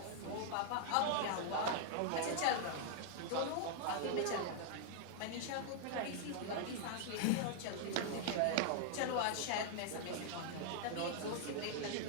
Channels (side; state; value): both; different; correlation 0.00